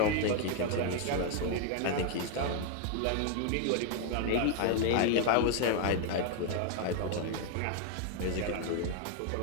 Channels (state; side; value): different; both; correlation 0.00